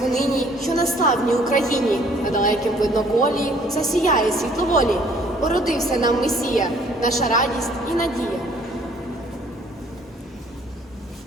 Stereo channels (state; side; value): normal; both; correlation 0.59